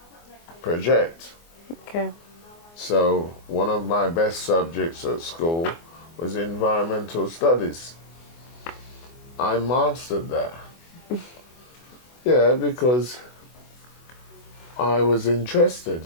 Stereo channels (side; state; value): right; late; 24 ms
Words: project. Okay. So one of my best subjects at school was environmental studies. I mastered that. Yeah, because I was